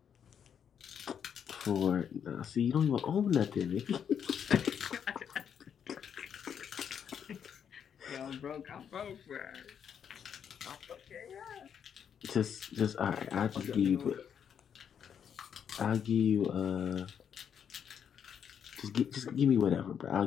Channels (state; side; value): quieter; right; 8.0 dB